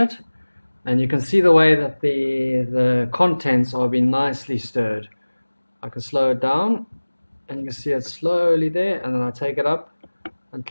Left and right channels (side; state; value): both; inverted; correlation -1.00